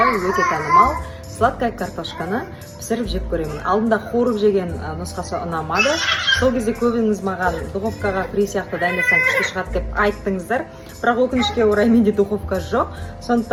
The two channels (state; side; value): identical; both; correlation 1.00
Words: өте танымал сладкая картошканы пісіріп жеп көремін. Алдында қуырып жеген нұсқасы ұнамады. Сол кезде көбіңіз маған духовкаға фри сияқты дайындасаң күшті шығады деп айттыңыздар. Бірақ өкінішке орай менде духовка жоқ.